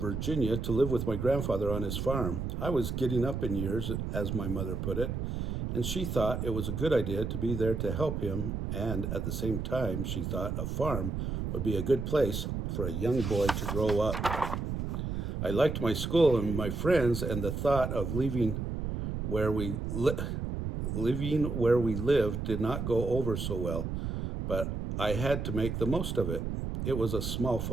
to live with my grandfather on his farm. I was getting up in years, as my mother put it, and she thought it was a good idea to be there to help him, and at the same time, she thought a farm would be a good place for a young boy to grow up. I liked my school and my friends, and the thought of living where we lived did not go over so well, but I had to make the most of it. It was a small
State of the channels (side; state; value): right; noise; rumble, 3 dB below the sound